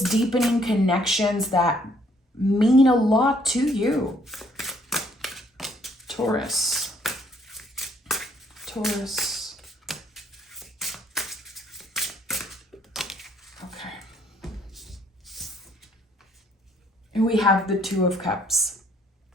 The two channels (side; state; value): both; normal; correlation 0.65